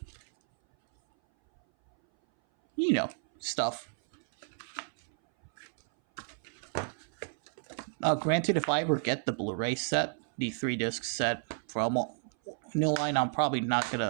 Stuff. Granted, if I ever get the Blu-ray set, the 3-disc set from New Line, I'm probably not going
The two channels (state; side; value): silent; left; 57 dB below the other